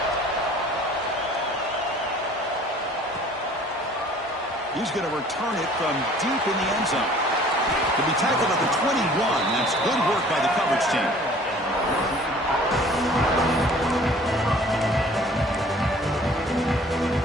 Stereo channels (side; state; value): both; normal; correlation 0.51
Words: He's going to return it from deep in the end zone. To be tackled at the 21. That's good work by the coverage team.